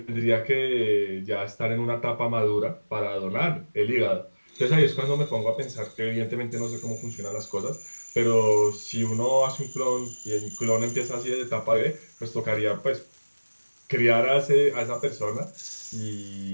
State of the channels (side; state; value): both; inverted; correlation -1.00